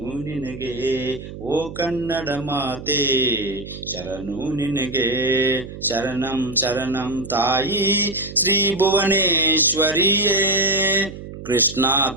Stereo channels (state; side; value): noise; right; hum, 12 dB below the sound